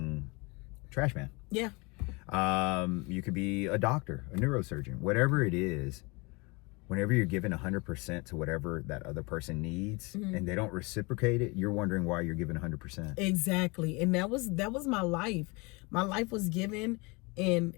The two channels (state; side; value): quieter; right; 27.3 dB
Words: trash man. Yeah. You could be a doctor, a neurosurgeon, whatever it is. Whenever you're giving 100% to whatever that other person needs, and they don't reciprocate it, you're wondering why you're giving 100%. Exactly. And that was my life. My life was given, and